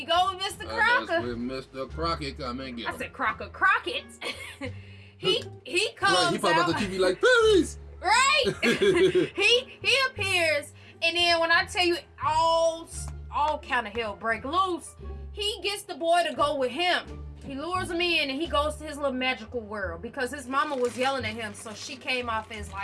go with Mr. Crocker. That's where Mr. Crocket come and get him. I said Crocket. he comes right, he popped out the TV like, please. Right. he appears, and then when I tell you all kind of hell break loose, he gets the boy to go with him. He lures him in, and he goes to his little magical world because his mama was yelling at him, so she came off as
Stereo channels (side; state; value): both; identical; correlation 1.00